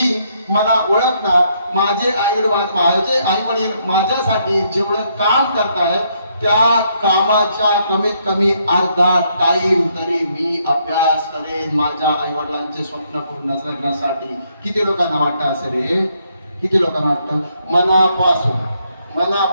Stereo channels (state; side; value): inverted; both; correlation -0.73